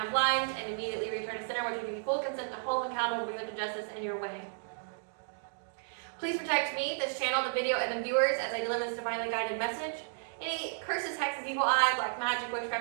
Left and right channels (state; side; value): silent; left; digital silence